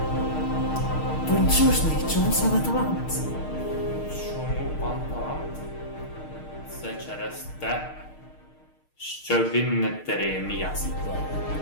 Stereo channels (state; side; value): late; right; 6.5 ms